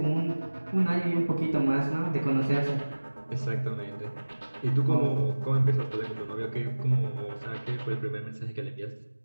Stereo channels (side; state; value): both; inverted; correlation -1.00